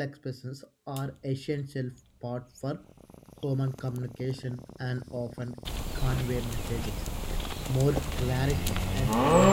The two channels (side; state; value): both; identical; correlation 1.00